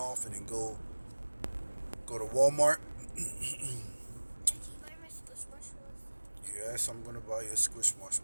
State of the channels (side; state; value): both; inverted; correlation -1.00